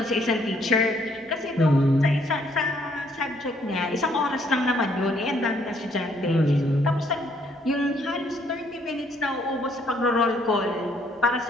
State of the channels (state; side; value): normal; both; correlation 0.67